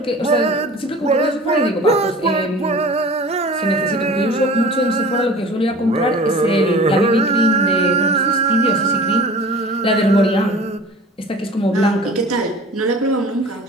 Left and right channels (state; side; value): normal; both; correlation 0.41